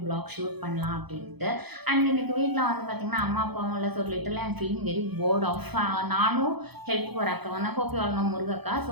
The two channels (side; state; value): left; late; 0.98 ms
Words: block shoot பண்ணலாம் அப்படின்ட்டு. And இன்னைக்கு வீட்டில் வந்து பார்த்தீங்கன்னா அம்மா அப்பாவும் இல்லை. So little I'm feeling very bored off. நானும் ஹெல்ப் ஒரு அக்கா வந்து ஹோப் யூ ஆல் நோ முருகக்கா. ஸோ